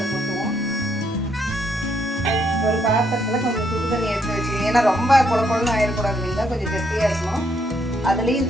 கொட்டுவோம். ஒரு பாத்திரத்தில் கொஞ்சம் சுடுதண்ணி எடுத்து வச்சுக்கோங்க. ஏன்னா ரொம்ப குழப்பம்னு ஆயிடக்கூடாது இல்லைங்களா, கொஞ்சம் கெட்டியாக இருக்கணும். அதுலேயும்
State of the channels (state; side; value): normal; both; correlation 0.73